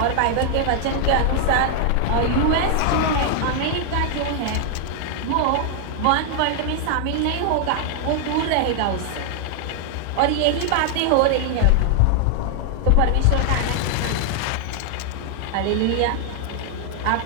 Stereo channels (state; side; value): different; both; correlation 0.00